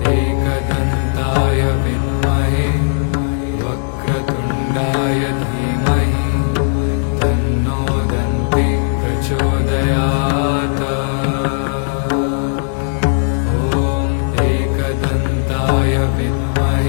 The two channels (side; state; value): right; silent; digital silence